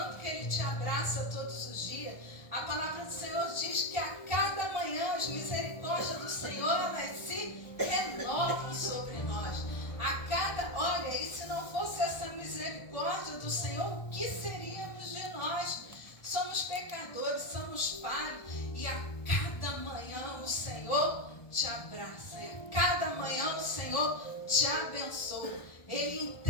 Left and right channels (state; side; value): late; right; 1.3 ms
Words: que Ele te abraça todos os dias. A palavra do Senhor diz que a cada manhã as misericórdias do Senhor, elas se renovam sobre nós. Olha, e se não fosse essa misericórdia do Senhor, o que seríamos de nós? Somos pecadores, somos falhos, e a cada manhã o Senhor te abraça, a cada manhã o Senhor te abençoa. Ele